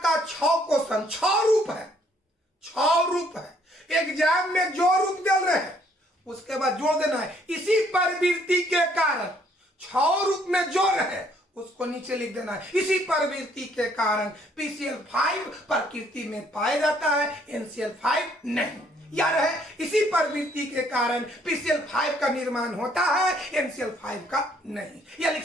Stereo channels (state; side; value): normal; both; correlation 0.65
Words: 6 क्वेश्चन 6 रूप है, 6 रूप है। एग्जाम में जो रूप दे रहे हैं उसके बाद जोड़ देना है। इसी प्रवृत्ति के कारण 6 रूप में जो है उसको नीचे लिख देना है। इसी प्रवृत्ति के कारण PCl5 प्रकृति में पाया जाता है, NCl5 नहीं। या रहे इसी प्रवृत्ति के कारण PCl5 का निर्माण होता है, NCl5 का नहीं। या लिख